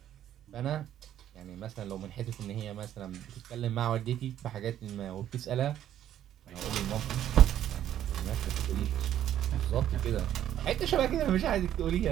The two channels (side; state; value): left; quieter; 11.2 dB